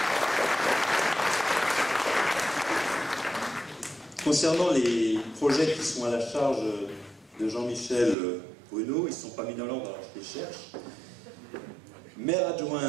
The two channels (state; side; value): drops out; left; at 8.2 s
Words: Concernant les projets qui sont à la charge de Jean-Michel Bruno, ils ne sont pas mis dans l'ordre, alors je les cherche. Maire